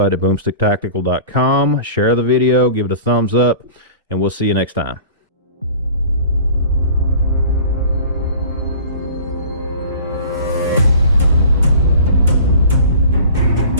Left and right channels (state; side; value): inverted; both; correlation -0.42